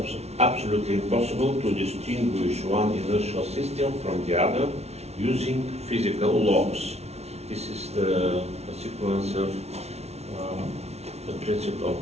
absolutely impossible to distinguish one inertial system from the other using physical laws. This is the sequence of the principle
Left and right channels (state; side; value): late; left; 0.31 ms